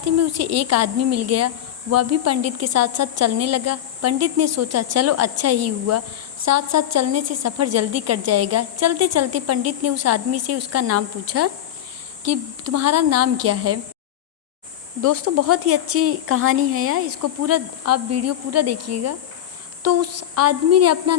में उसे एक आदमी मिल गया। वह भी पंडित के साथ साथ चलने लगा। पंडित ने सोचा, चलो अच्छा ही हुआ, साथ साथ चलने से सफ़र जल्दी कट जाएगा। चलते चलते पंडित ने उस आदमी से उसका नाम पूछा कि तुम्हारा नाम क्या है। दोस्तों, बहुत ही अच्छी कहानी है यार, इसको पूरा आप वीडियो पूरा देखिएगा। तो उस आदमी ने अपना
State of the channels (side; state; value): right; quieter; 11.3 dB